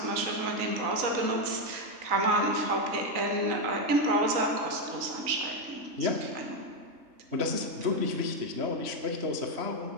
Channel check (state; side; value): late; left; 3.9 ms